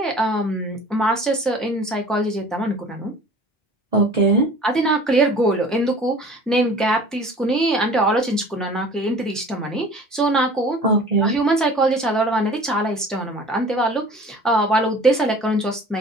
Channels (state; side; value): normal; both; correlation 0.44